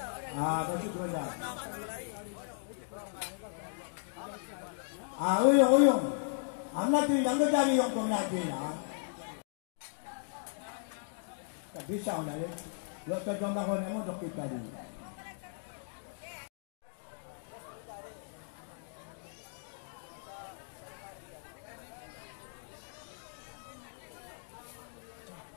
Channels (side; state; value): right; silent; digital silence